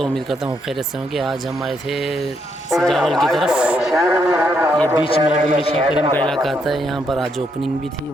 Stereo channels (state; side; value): normal; both; correlation 0.76